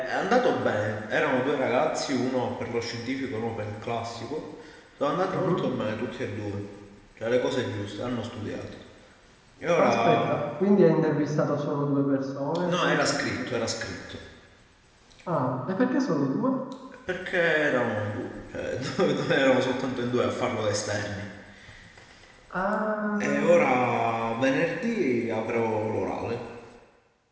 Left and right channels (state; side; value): identical; both; correlation 1.00